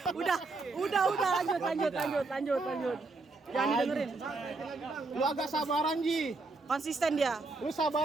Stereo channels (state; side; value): quieter; left; 3.6 dB